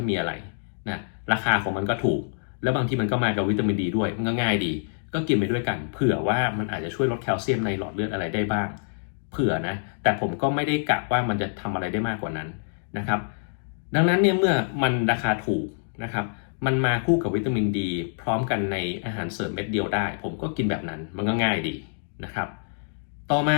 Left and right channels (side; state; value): right; silent; digital silence